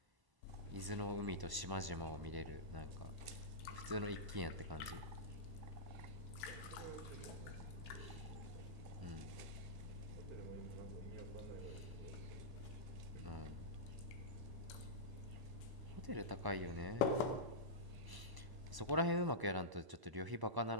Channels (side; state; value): left; late; 1.0 ms